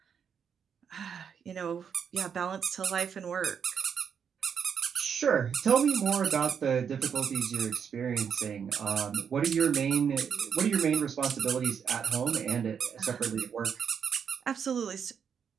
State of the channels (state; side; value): quieter; left; 7.3 dB